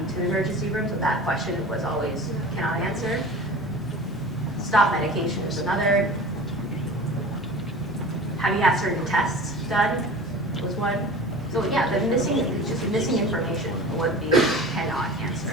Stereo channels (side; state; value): both; normal; correlation 0.37